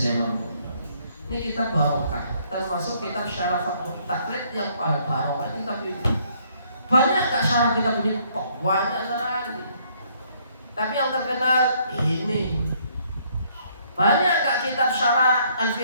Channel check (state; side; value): inverted; both; correlation -0.66